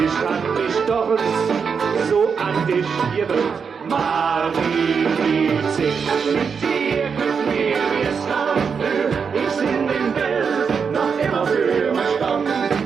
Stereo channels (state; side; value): quieter; left; 6.1 dB